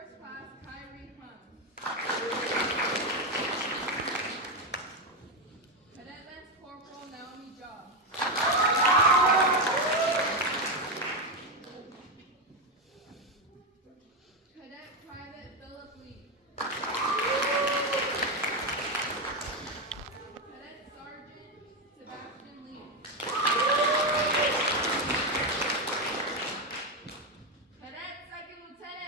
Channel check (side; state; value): both; normal; correlation 0.09